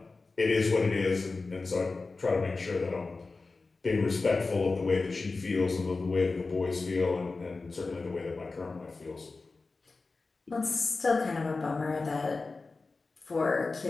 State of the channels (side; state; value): right; quieter; 3.8 dB